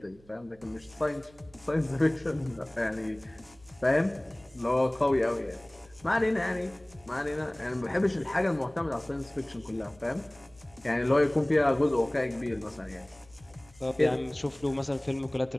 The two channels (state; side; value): noise; right; hum, 27 dB below the sound